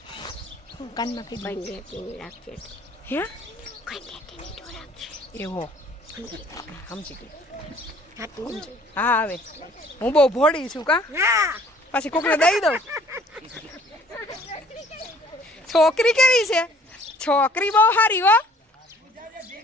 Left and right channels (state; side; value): normal; both; correlation 0.56